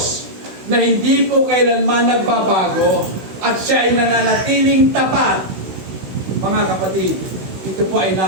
na hindi po kailanman nagbabago at siya ay nananatiling tapat. Mga kapatid, ito po ay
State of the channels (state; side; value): late; left; 16 ms